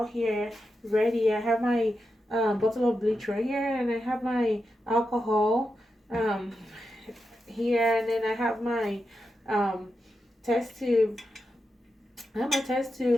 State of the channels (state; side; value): normal; both; correlation 0.88